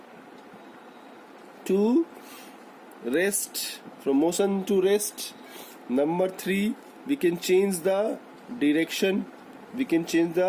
to rest, Number 3, we can change the direction.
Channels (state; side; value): identical; both; correlation 1.00